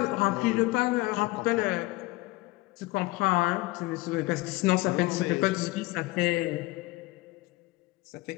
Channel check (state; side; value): quieter; right; 20.9 dB